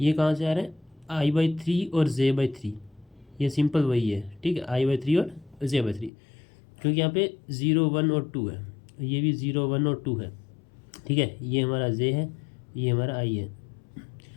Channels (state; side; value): drops out; right; at 6.1 s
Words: ये कहाँ से आ रहे हैं, I/3 और J/3, ये सिंपल वही है। ठीक है, I/3 और J/3, क्योंकि यहाँ पे 0 1 और 2 है, ये भी 0 1 और 2 है। ठीक है, ये हमारा J है, ये हमारा I है।